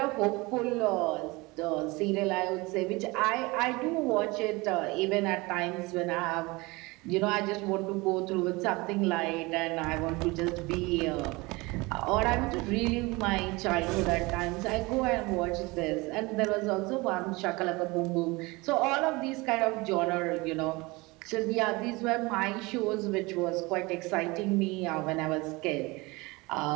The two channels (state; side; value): quieter; left; 23.9 dB